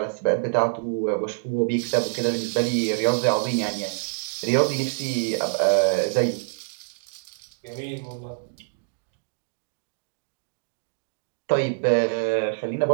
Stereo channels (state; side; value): silent; left; digital silence